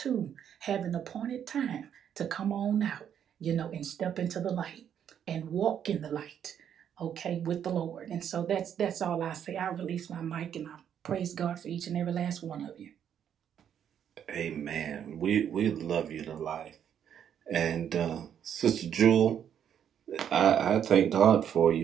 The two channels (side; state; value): left; quieter; 9.0 dB